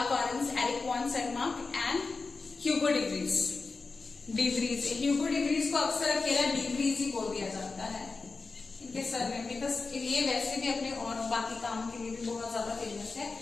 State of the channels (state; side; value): quieter; right; 4.1 dB